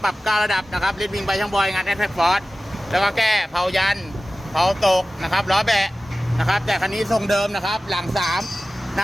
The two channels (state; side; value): normal; both; correlation 0.96